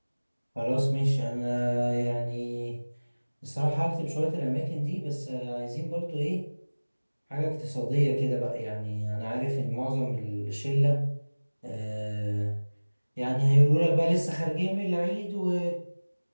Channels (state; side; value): inverted; both; correlation -1.00